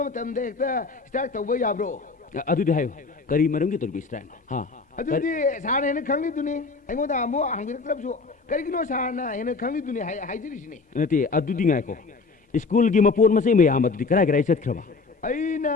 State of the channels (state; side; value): quieter; right; 4.2 dB